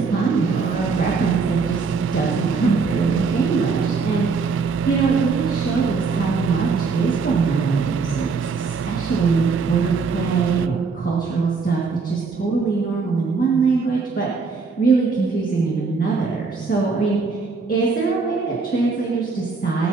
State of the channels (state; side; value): quieter; left; 4.8 dB